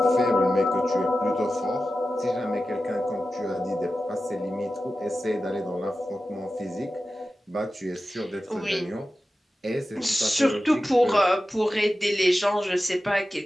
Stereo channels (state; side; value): normal; both; correlation 0.93